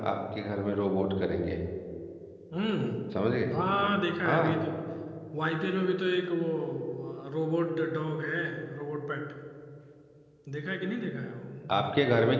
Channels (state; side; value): identical; both; correlation 1.00